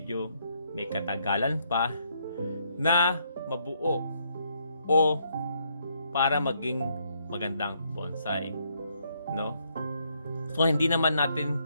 may katagalan pa na mabuo o para maging magandang bonsai, no? So, hindi naman natin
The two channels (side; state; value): both; inverted; correlation -0.73